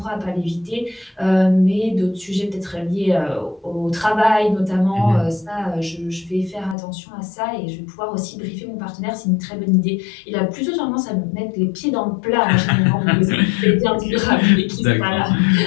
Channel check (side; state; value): right; drops out; at 6.8 s